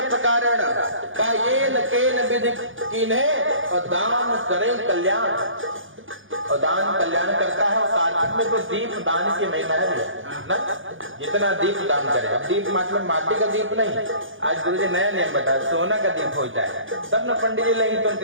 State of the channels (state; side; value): late; left; 0.58 ms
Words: प्रकारण का ये न केन विधि कीन्हे और दान करें कल्याण, और दान कल्याण करता है। और कार्तिक में तो दीप दान की महिमा है ना, जितना दीप दान करे। अब दीप मतलब माटी का दीप नहीं, आज गुरु जी नया नियम बताया, सोना का दीप हो जाए तब न पंडित जी लेंगे तो